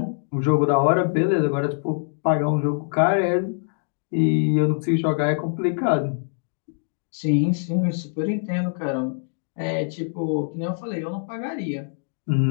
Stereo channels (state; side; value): silent; right; digital silence